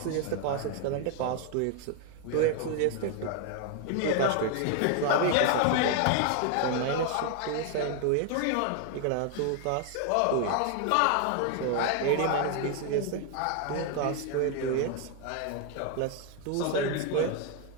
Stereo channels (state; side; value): different; both; correlation 0.00